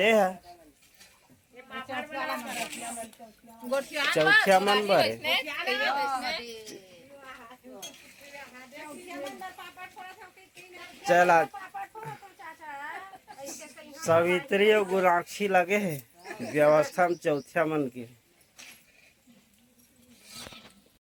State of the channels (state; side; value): identical; both; correlation 1.00